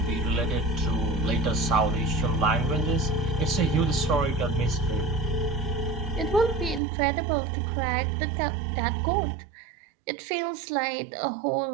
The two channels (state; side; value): drops out; left; at 6.8 s